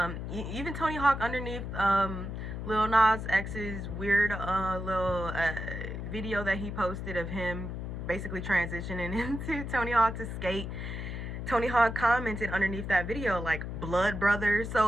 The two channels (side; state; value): left; noise; hum, 6 dB below the sound